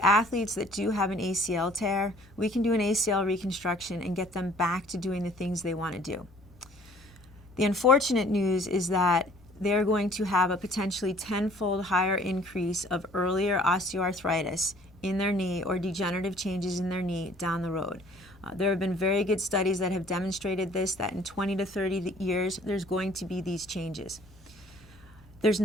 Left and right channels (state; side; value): normal; both; correlation 0.55